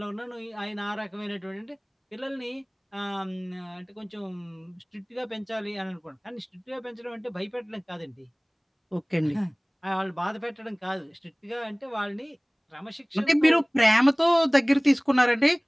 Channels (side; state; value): both; identical; correlation 1.00